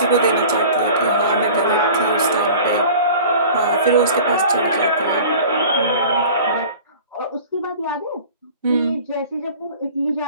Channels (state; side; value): inverted; both; correlation -0.42